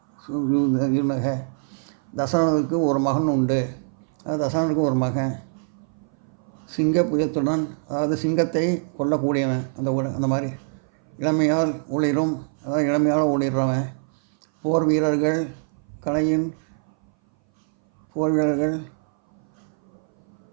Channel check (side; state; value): left; silent; 59 dB below the other